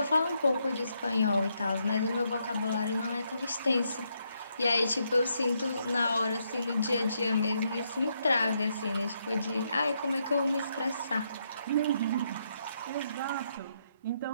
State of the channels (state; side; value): inverted; both; correlation -0.77